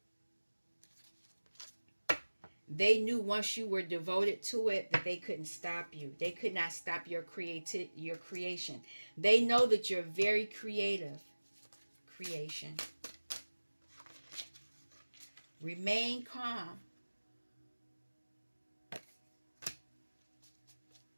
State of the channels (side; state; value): both; inverted; correlation -1.00